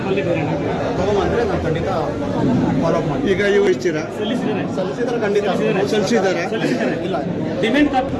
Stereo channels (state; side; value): identical; both; correlation 1.00